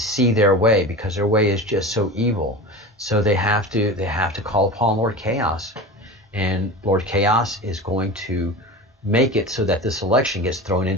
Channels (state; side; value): normal; both; correlation 0.31